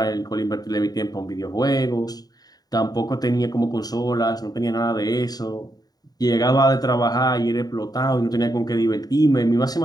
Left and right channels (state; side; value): late; right; 0.19 ms